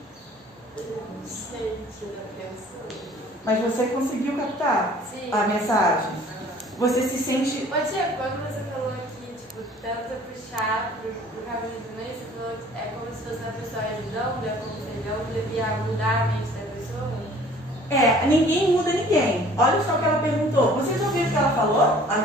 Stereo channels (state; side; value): normal; both; correlation 0.52